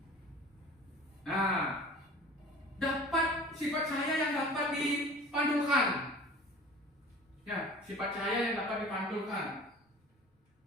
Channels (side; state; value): both; normal; correlation 0.42